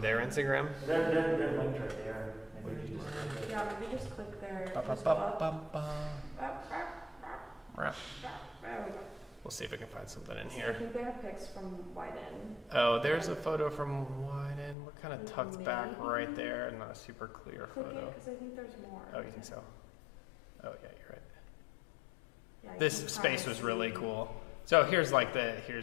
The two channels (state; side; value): drops out; right; at 14.8 s